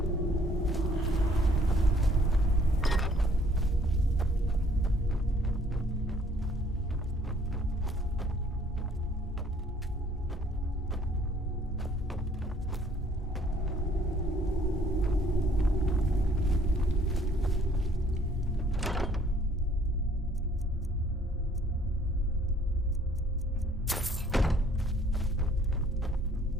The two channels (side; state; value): both; normal; correlation 0.60